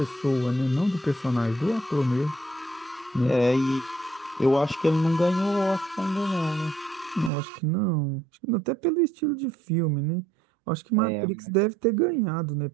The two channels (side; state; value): left; drops out; at 7.3 s